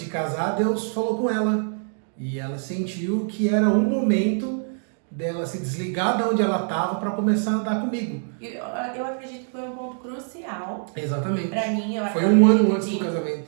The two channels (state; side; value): silent; left; 62 dB below the other